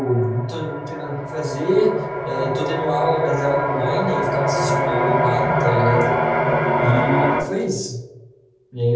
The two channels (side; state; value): both; identical; correlation 1.00